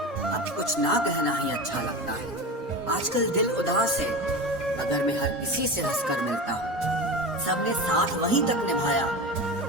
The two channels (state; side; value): normal; both; correlation 0.26